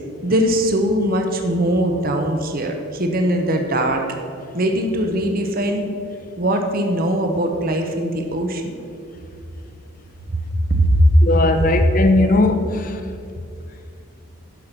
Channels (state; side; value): normal; both; correlation 0.58